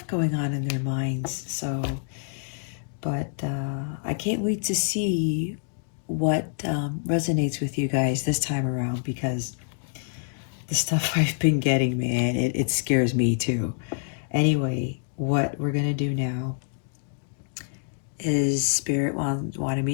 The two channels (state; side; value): silent; right; digital silence